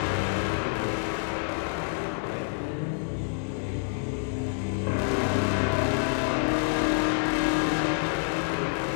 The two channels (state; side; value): silent; right; digital silence